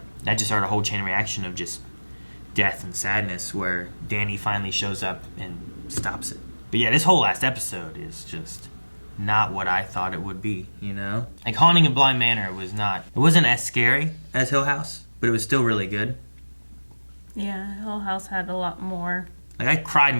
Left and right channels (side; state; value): both; inverted; correlation -1.00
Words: that just started a whole chain reaction of just death and sadness where Danny finally shows up and stops it. But yeah, this whole last episode is just not what I thought it would be, you know? Like, Haunting of Bly Manor wasn't as scary as Hill House, but it was still really good. Yeah, Hill House had a lot more. Like, I cried